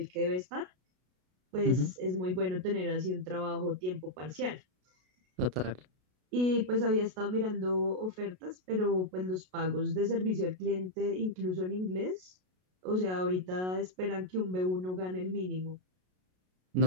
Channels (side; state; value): left; late; 33 ms